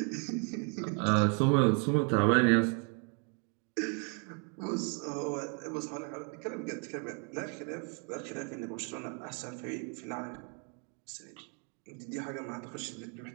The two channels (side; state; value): left; quieter; 38.4 dB